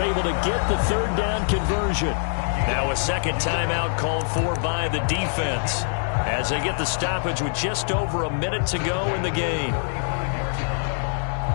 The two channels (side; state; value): right; silent; 63 dB below the other